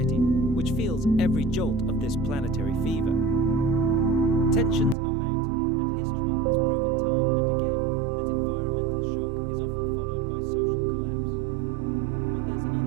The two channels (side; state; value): left; drops out; at 5.0 s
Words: which feels every jolt of this planetary fever. Tensions are mounting, and history has proven time and again that environmental shock is often followed by social collapse. But there's